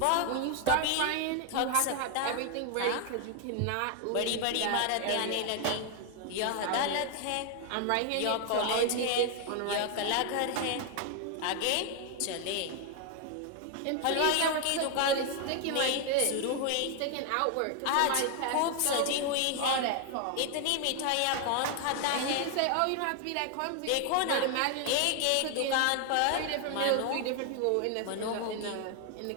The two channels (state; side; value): different; both; correlation 0.00